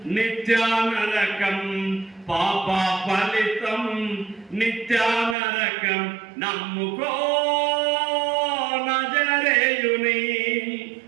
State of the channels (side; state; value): left; drops out; at 5.4 s